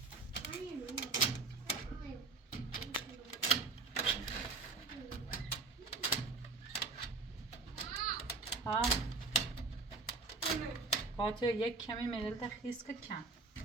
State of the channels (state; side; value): quieter; left; 4.0 dB